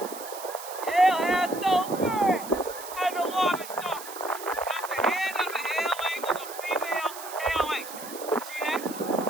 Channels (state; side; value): noise; right; hiss, 13 dB below the sound